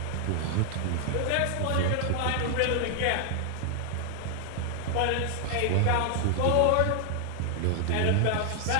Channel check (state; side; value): different; both; correlation 0.00